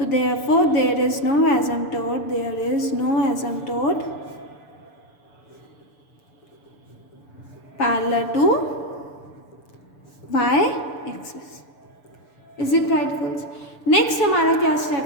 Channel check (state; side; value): late; right; 6.9 ms